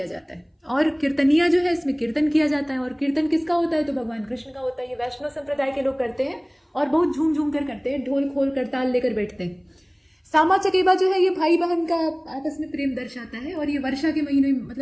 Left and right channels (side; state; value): both; identical; correlation 1.00